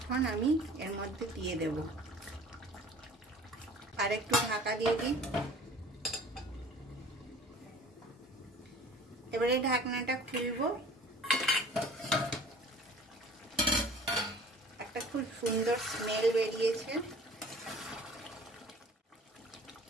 আমি এর মধ্যে দিয়ে দেব। আর একটু ঢাকা দিয়ে দিই। এবারে ঢাকনাটা খুলবো। একটা খুব সুন্দর স্মেল বেরিয়েছে,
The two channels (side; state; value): both; normal; correlation 0.47